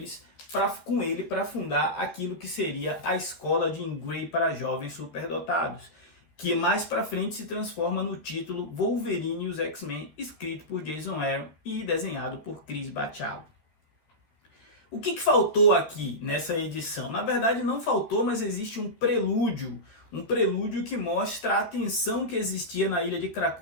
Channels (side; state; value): right; late; 13 ms